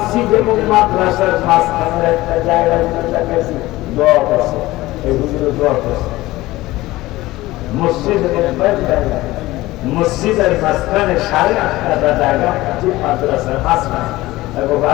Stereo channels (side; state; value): right; quieter; 18.1 dB